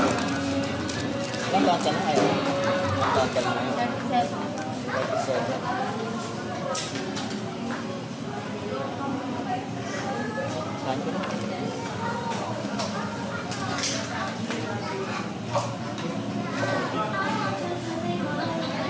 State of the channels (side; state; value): both; identical; correlation 1.00